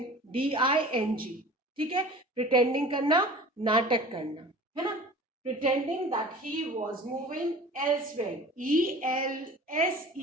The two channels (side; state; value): both; normal; correlation 0.41